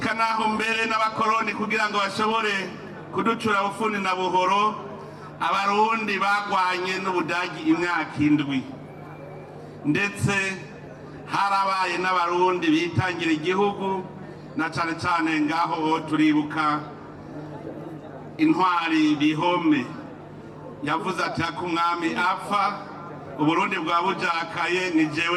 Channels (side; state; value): both; identical; correlation 1.00